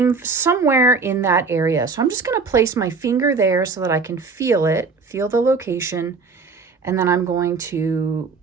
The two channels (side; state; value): left; quieter; 4.6 dB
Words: somewhere in that area. So I'm just going to place my finger there so that I can feel it, feel the location. And then I'm going to